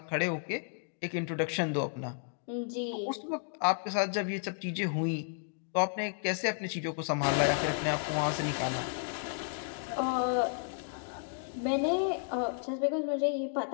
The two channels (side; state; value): right; silent; digital silence